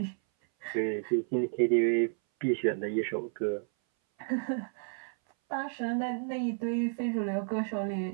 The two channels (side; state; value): left; silent; 57 dB below the other